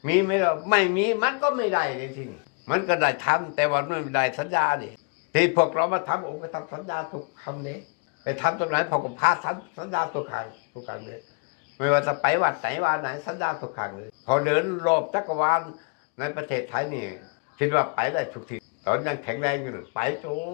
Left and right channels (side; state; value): right; quieter; 34.7 dB